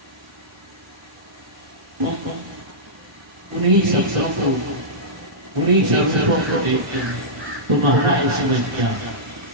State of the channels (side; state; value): left; late; 1.4 ms